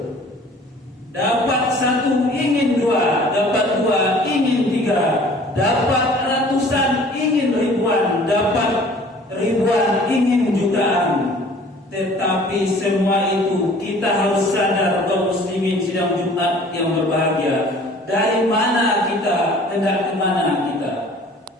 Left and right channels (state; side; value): normal; both; correlation 0.50